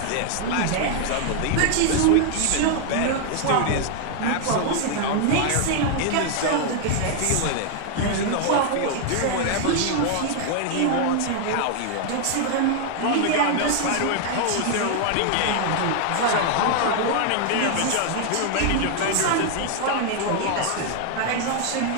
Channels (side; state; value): both; different; correlation 0.00